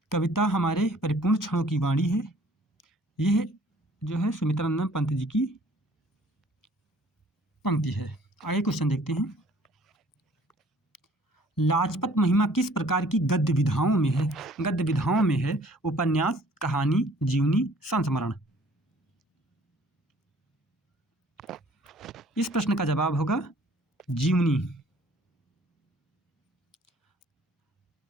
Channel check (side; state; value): both; normal; correlation 0.55